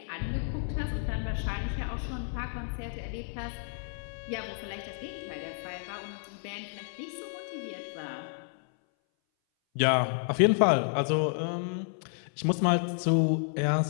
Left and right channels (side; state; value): right; silent; 57 dB below the other